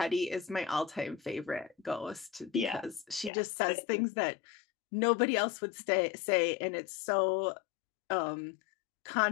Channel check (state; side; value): drops out; right; at 3.3 s